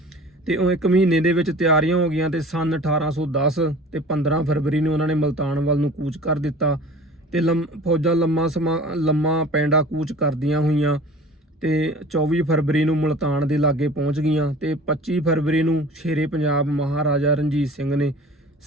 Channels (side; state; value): both; normal; correlation 0.43